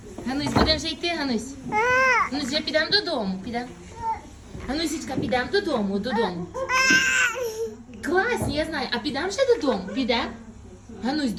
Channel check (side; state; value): both; identical; correlation 1.00